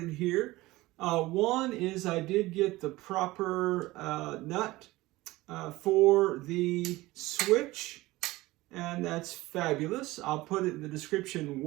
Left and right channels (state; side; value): quieter; left; 19.2 dB